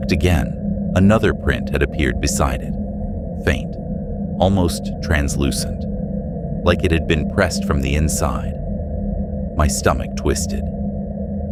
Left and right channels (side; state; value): both; identical; correlation 1.00